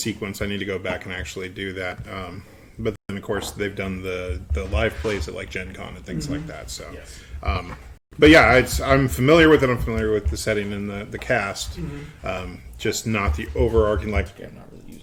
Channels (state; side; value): identical; both; correlation 1.00